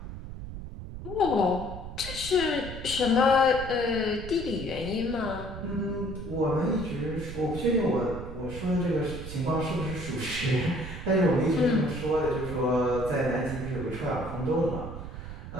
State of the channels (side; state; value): right; noise; rumble, 10 dB below the sound